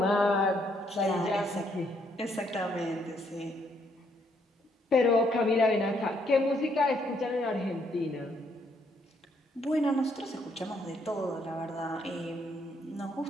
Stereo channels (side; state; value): both; normal; correlation 0.71